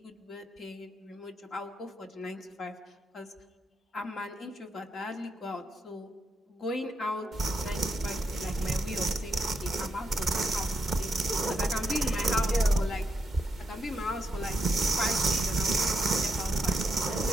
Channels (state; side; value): normal; both; correlation 0.81